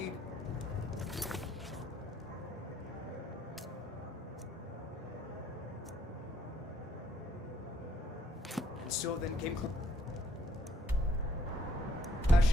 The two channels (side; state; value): both; normal; correlation 0.68